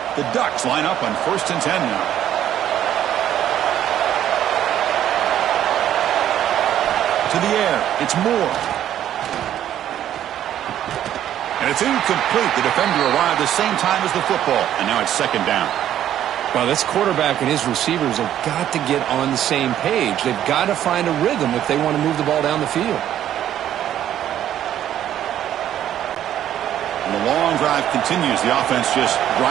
The Ducks line up on 1st and 10 now. To the air, it's Moore. And it's incomplete. The defender arrived the same time as the football, and now it's 2nd down. Well, this quarterback and his receivers have got to get on the same page. They've got to find a rhythm if they want to move the ball down the field. And the long drive continues. The offense just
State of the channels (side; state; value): left; quieter; 11.2 dB